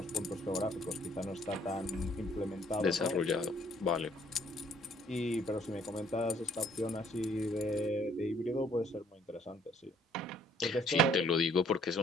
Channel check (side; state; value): both; normal; correlation 0.62